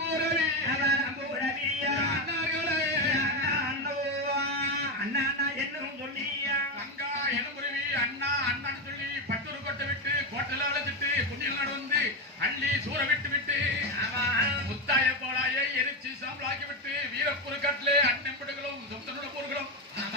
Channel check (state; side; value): normal; both; correlation 0.10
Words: அவரம்போரவி அண்ணார்களே அண்ணா அண்ணா அண்ணா என்னும் சொல்லியா தங்கா எலும்புருவி அண்ணா அண்ணான்னு சொல்லி பட்டூர் கொட்டை விட்டு கோட்டல அழைச்சிட்டு குஞ்சில் நடந்து அள்ளி சூற விட்டு விட்டு முத்தாய போலாய எரிச்சு சாம்பலாக்கி விட்டு வீரப்பூர் கட்டிலே அண்ணன்படுகளும் சொந்தனோட போர்களும்